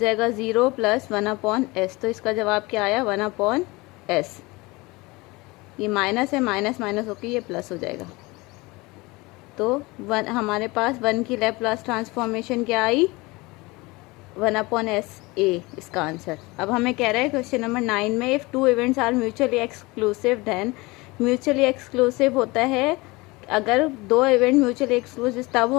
0 + 1/s, तो इसका जवाब क्या आया 1/s। ये माइनस है, माइनस माइनस होकर ये प्लस हो जाएगा। तो हमारे पास 1 की लैप्लास ट्रांसफॉर्मेशन क्या आई 1/s a, इसका आंसर। अब हमें कह रहा है क्वेश्चन नंबर 9 में, if 2 events are mutually exclusive then, mutually exclusive होता है अगर 2 इवेंट म्यूचुअली एक्सक्लूसिव तब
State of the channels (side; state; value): right; quieter; 23.4 dB